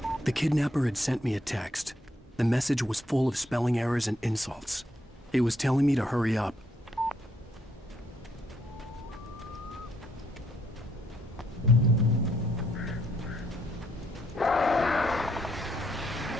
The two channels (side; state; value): both; normal; correlation 0.73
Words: The kidnapper had sent me a text. The message was full of spelling errors and insults. It was telling me to hurry up.